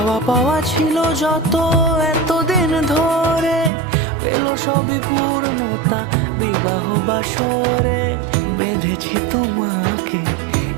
পাওয়া ছিল যত এতদিন ধরে, পেল সবই পূর্ণতা বিবাহ বাসরে। বেঁধেছি তোমাকে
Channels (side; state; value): left; drops out; at 3.7 s